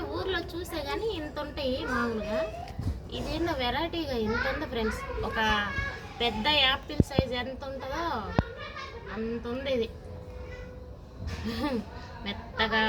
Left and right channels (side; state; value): both; identical; correlation 1.00